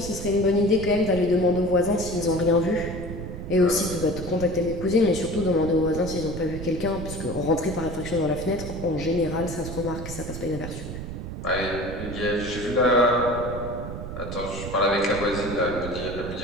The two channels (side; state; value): right; noise; rumble, 8 dB below the sound